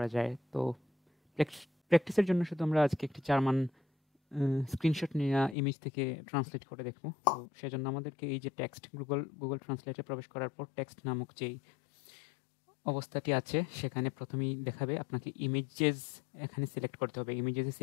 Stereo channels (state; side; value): drops out; right; at 5.6 s